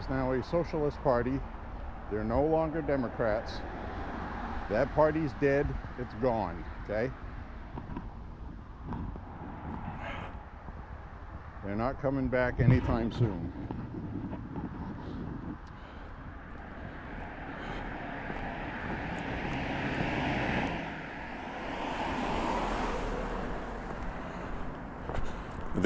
now a socialist party. They're no longer Democrats. That party's dead. It's gone, okay? They're not coming back anytime soon.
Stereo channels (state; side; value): identical; both; correlation 1.00